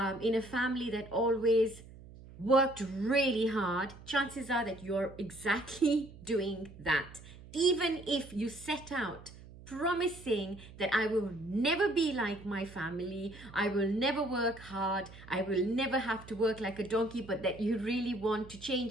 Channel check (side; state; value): right; noise; hum, 18 dB below the sound